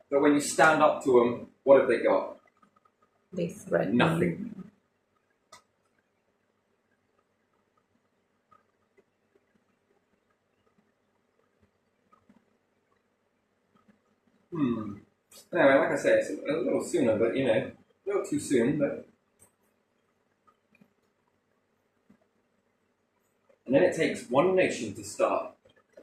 But when you stand up to them, what have they got? They threaten Nothing. Anyway, like I say, it's a little sooner, but you know, a little too soon, but... And then it takes one nation to start.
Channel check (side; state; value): both; identical; correlation 1.00